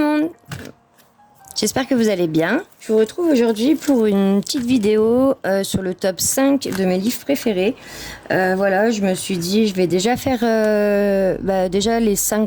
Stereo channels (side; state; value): both; identical; correlation 1.00